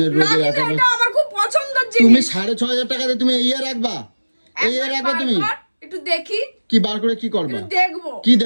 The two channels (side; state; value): both; inverted; correlation -1.00